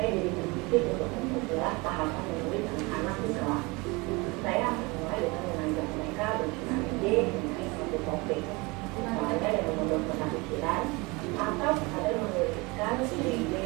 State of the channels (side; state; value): left; quieter; 25.7 dB